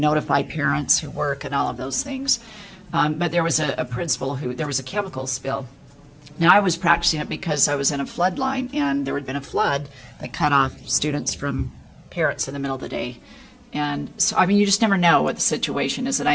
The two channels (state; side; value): identical; both; correlation 1.00